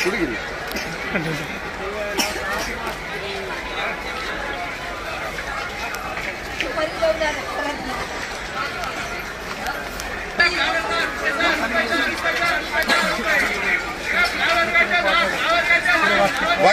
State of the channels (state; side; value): identical; both; correlation 1.00